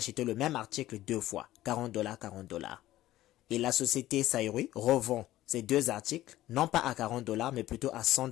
le même article 2 fois, 40 $, 40 $. Et la société Saïroui revend ces 2 articles, non pas à 40 $ mais plutôt à 100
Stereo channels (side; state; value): right; quieter; 15.0 dB